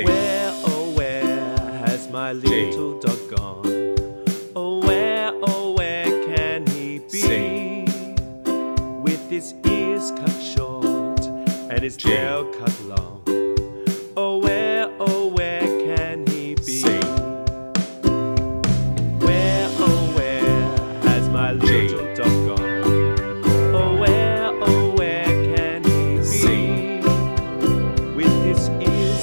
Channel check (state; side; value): inverted; both; correlation -1.00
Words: Where, oh where has my little dog gone?